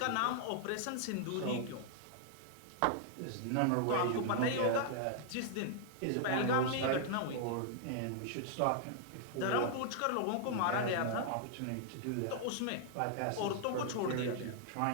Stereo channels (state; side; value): different; both; correlation -0.01